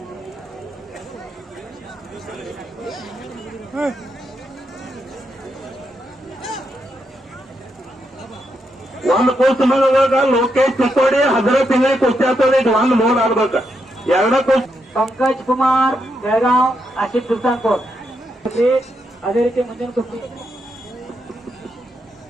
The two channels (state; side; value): normal; both; correlation 0.81